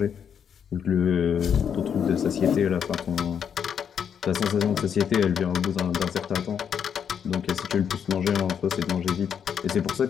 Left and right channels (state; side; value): quieter; right; 7.8 dB